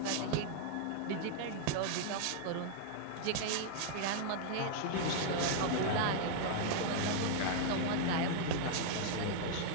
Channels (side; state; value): both; different; correlation -0.01